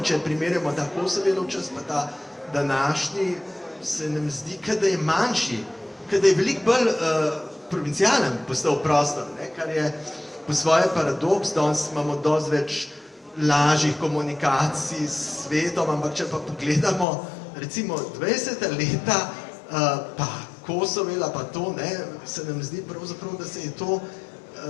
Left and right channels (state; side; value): drops out; right; at 17.1 s